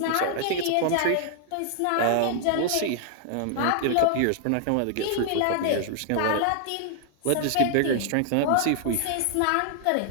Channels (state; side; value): different; both; correlation 0.00